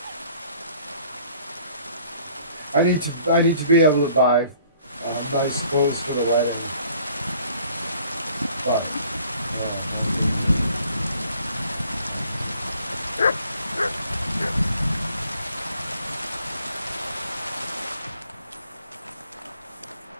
I need to be able to buy nice clothes for the wedding. But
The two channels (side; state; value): both; inverted; correlation -0.57